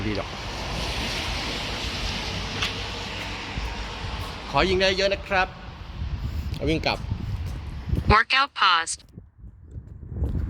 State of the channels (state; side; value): identical; both; correlation 1.00